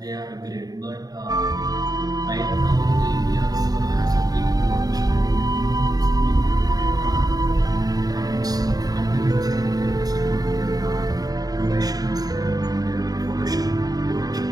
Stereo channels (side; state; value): left; late; 0.18 ms